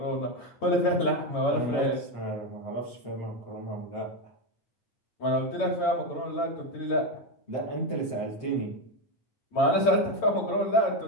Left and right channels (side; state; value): right; late; 8.8 ms